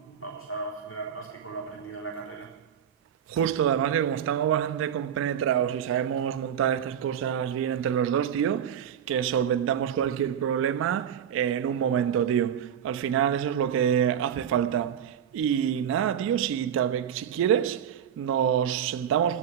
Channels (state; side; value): quieter; left; 8.9 dB